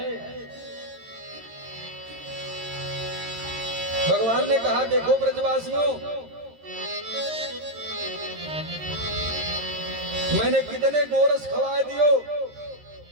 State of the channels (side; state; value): left; late; 13 ms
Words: भगवान ने कहा देखो ब्रजवासियों, मैंने कितने गोरस खवा दियो